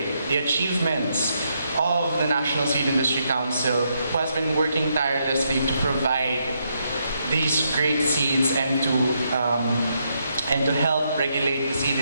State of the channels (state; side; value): inverted; both; correlation -0.78